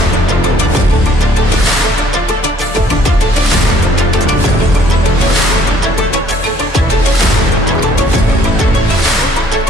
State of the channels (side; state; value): both; normal; correlation 0.60